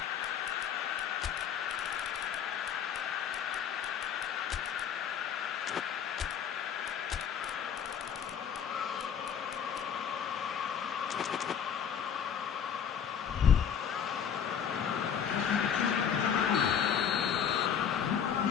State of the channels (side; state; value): right; quieter; 8.1 dB